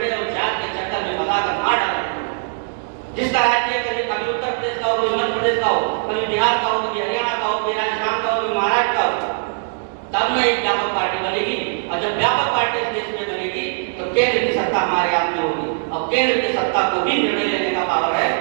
और जात के चक्कर में फंसा कर मार डाला। जिसका राष्ट्रीय कभी उत्तर प्रदेश का हो, कभी मध्य प्रदेश का हो, कभी बिहार का हो, कभी हरियाणा का हो, कभी राजस्थान का हो, कभी महाराष्ट्र का हो, तब में एक व्यापक पार्टी बनेगी। और जब व्यापक पार्टी इस देश में बनेगी तो केंद्र की सत्ता हमारे हाथ में होगी, और केंद्र की सत्ता को भी निर्णय लेने का पावर है।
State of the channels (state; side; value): silent; left; digital silence